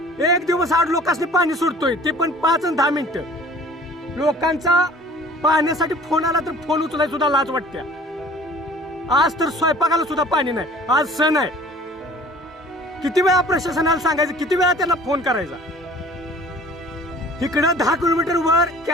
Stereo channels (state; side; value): normal; both; correlation 0.48